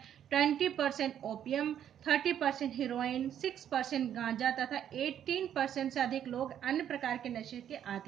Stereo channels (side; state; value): left; quieter; 9.9 dB